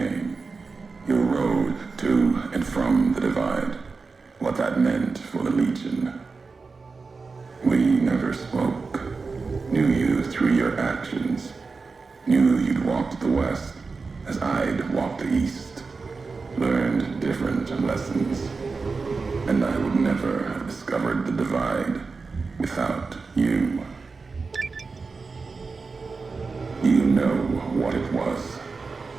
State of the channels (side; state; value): left; quieter; 4.4 dB